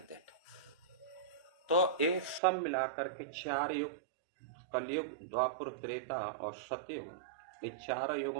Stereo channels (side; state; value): left; drops out; at 2.4 s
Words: दैट। तो ये सब मिलाकर के 4 युग, कलयुग, द्वापुर, त्रेता और सतयुग, ये 4